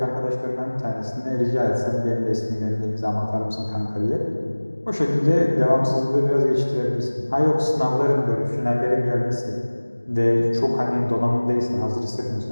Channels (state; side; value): inverted; both; correlation -1.00